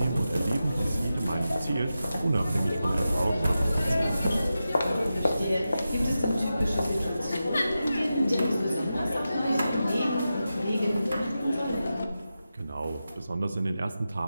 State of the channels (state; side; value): inverted; both; correlation -0.91